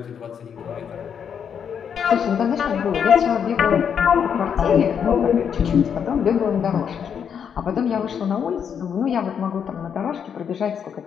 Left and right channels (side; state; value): right; quieter; 7.6 dB